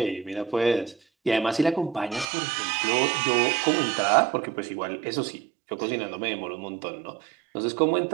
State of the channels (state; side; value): drops out; left; at 2.2 s